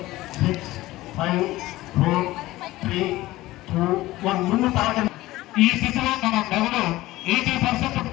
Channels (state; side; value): quieter; right; 17.5 dB